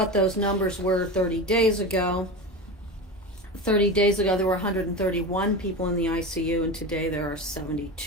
those numbers were 30 days ago, there were 131 people in the ICU, and today there are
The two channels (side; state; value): both; normal; correlation 0.25